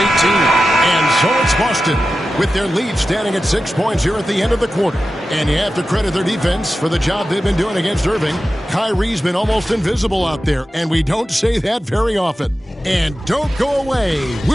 And so it's Boston with their lead standing at 6 points here at the end of the quarter. And you have to credit their defense for the job they've been doing against Irving. Kyrie's been almost invisible out there, and we don't say that very often. And don't go away.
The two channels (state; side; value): normal; both; correlation 0.93